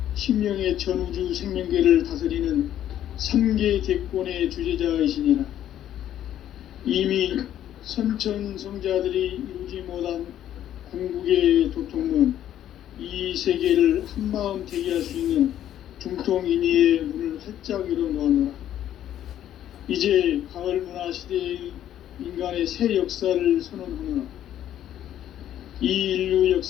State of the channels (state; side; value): quieter; right; 11.4 dB